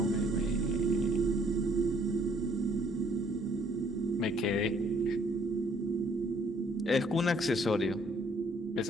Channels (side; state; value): both; normal; correlation 0.63